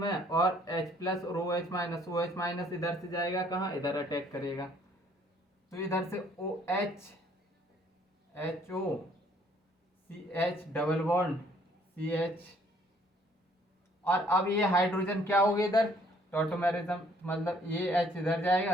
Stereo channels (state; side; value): normal; both; correlation 0.62